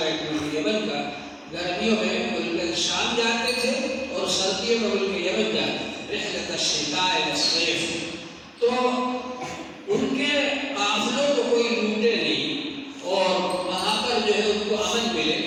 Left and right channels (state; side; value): identical; both; correlation 1.00